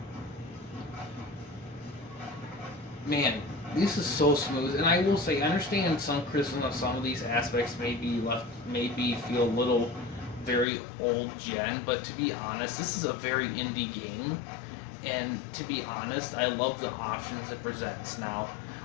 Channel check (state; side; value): drops out; right; at 10.7 s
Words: Man, this is so smooth. And I will say, I understand some criticism of some of these aspects maybe feel a little very old gen, but to be honest, this is a very indie game. And to be honest, I love the options it presents now.